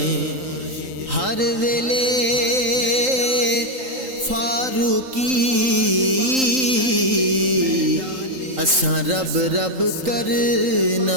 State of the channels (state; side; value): late; left; 3.8 ms